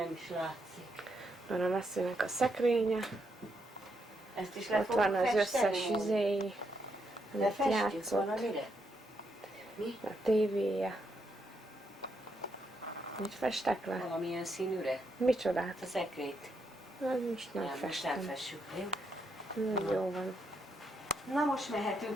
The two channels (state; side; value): normal; both; correlation 0.79